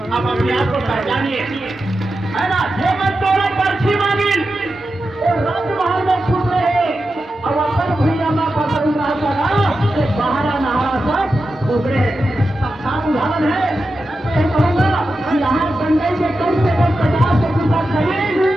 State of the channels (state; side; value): normal; both; correlation 0.90